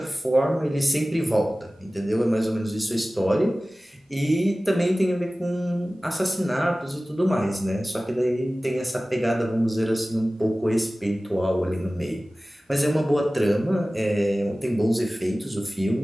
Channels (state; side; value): normal; both; correlation 0.97